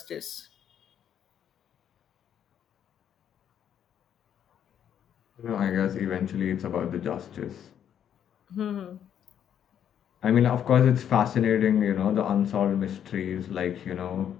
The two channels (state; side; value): quieter; right; 9.3 dB